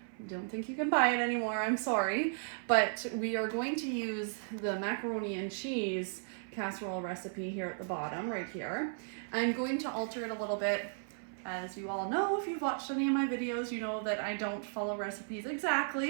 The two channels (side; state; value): left; silent; 54 dB below the other